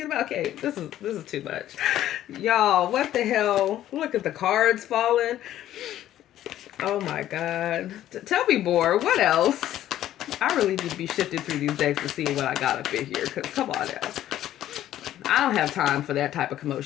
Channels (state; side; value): quieter; right; 12.6 dB